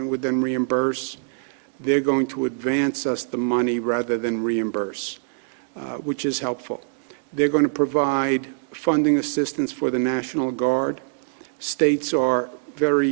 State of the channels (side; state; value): left; silent; digital silence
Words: would then reimburse. They're going to advance us the money rather than reimburse, which is helpful. They're going to provide funding assistance for the National Guard. States are